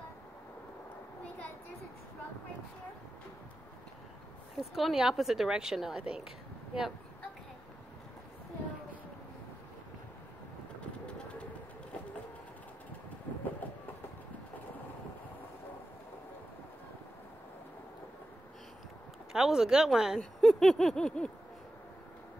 there's a truck right here. It's going the opposite direction now, I think. Yep. Okay. So That was a good one. So I know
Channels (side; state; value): both; normal; correlation 0.92